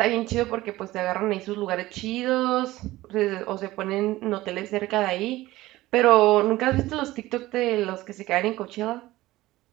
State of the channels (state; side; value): quieter; left; 17.5 dB